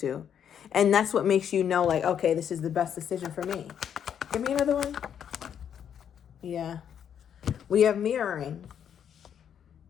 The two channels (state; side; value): quieter; right; 8.7 dB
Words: to. And that's what makes you know, like, okay, this is the best decision for me. Give me another one. Yeah. We have mirroring.